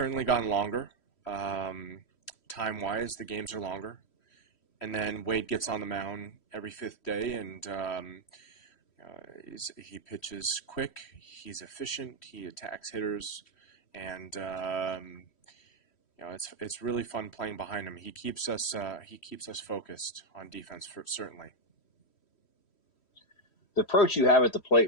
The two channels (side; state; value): right; late; 3.1 ms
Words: gotten longer. Time-wise, the games are longer. And then Wade gets on the mound every fifth day, and he pitches quick. He's efficient. He attacks hitters, and it's really fun playing behind him. He keeps us focused on defense, certainly. The approach you have at the plate